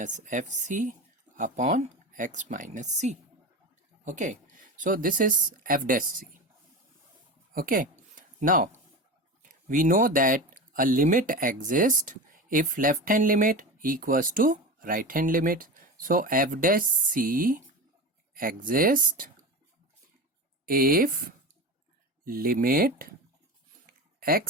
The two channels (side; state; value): both; normal; correlation 0.26